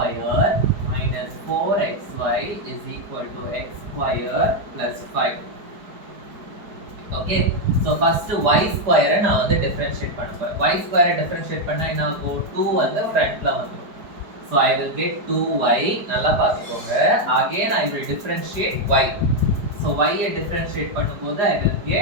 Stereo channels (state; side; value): late; left; 4.7 ms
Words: minus 4xy is equal to x square plus 5. Okay, so first y square நான் வந்து differentiate பண்ண போறேன். Y square differentiate பண்ணா என்ன ஆகும்? 2 வந்து ஃப்ரண்ட்ல வந்துரும். So I will get 2y. நல்லா பார்த்துக்கோங்க. Again I will differentiate y. So y ஐ differentiate பண்ணும்போது I will